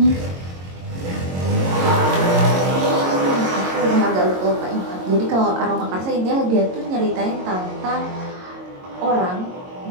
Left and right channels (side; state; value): left; late; 22 ms